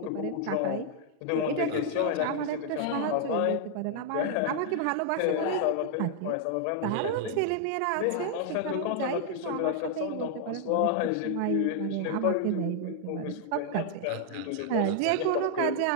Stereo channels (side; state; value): both; different; correlation 0.00